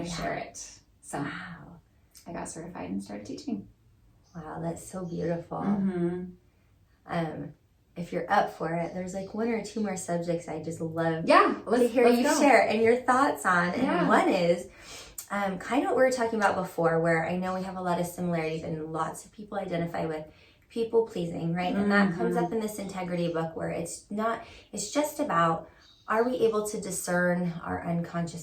share it. So I got certified and started teaching. Wow, that's so beautiful. If you're up for it, there's like 1 or 2 more subjects I just love to hear you share and your thoughts on. And one is kind of what we were talking about before, where I know we have a lot of similarities and lots of people identify with people pleasing, right? And that comes up in this integrity book, where it's just about, are we able to discern our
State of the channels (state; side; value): identical; both; correlation 1.00